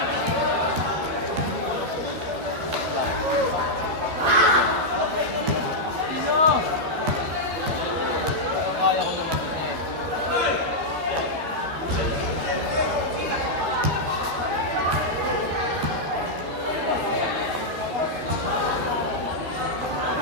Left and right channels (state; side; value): late; left; 13 ms